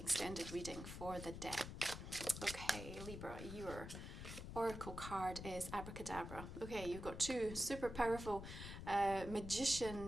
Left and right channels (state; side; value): noise; left; rumble, 8 dB below the sound